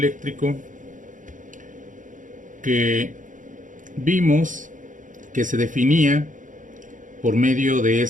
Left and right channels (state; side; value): late; left; 0.37 ms